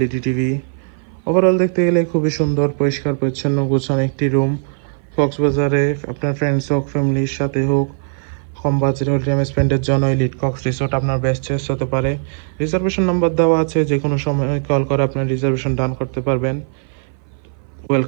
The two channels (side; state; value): left; silent; 57 dB below the other